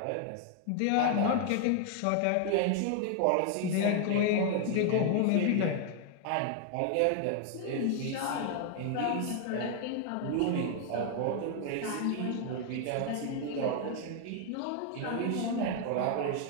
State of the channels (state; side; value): different; both; correlation 0.00